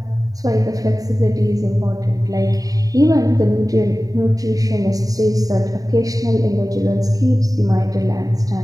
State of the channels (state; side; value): late; left; 0.18 ms